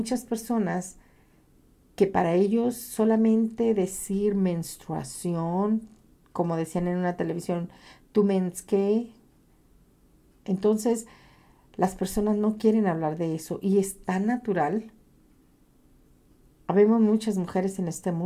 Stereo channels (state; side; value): identical; both; correlation 1.00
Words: personas que para ellos solamente decir menstruación, como decían en una televisión, tu mens qué. Entonces, las personas no quieren hablar de eso y es tan natural. Habemos muchas mujeres en este